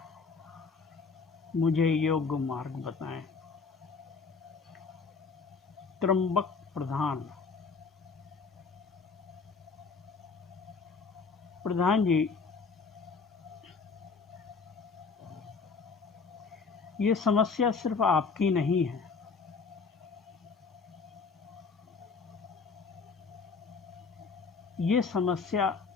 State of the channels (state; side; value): quieter; right; 4.9 dB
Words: मुझे योग्य मार्ग बताएं। त्र्यंबक प्रधान जी, ये समस्या सिर्फ आपकी नहीं है, ये समस्या